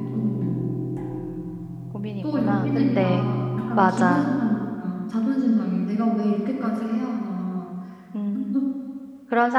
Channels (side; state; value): both; identical; correlation 1.00